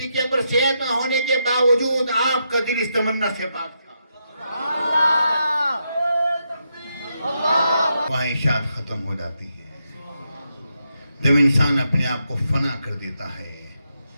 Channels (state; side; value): inverted; both; correlation -0.82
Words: اکبر صحت نہ ہونے کے باوجود آپ کا دل اس تمنا سے پاک تھا۔ خواہشات ختم ہو جاتی ہیں جب انسان اپنے آپ کو فنا کر دیتا ہے،